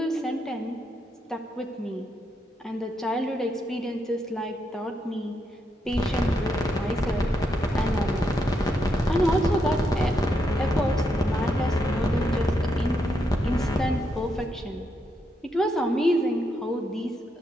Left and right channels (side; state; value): both; normal; correlation 0.80